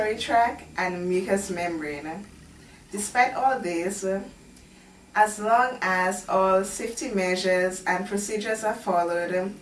tract, and mucous membrane. Despite all this, as long as all safety measures and procedures are followed,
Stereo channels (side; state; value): both; identical; correlation 1.00